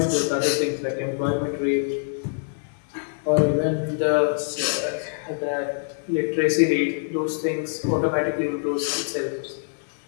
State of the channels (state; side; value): silent; right; 62 dB below the other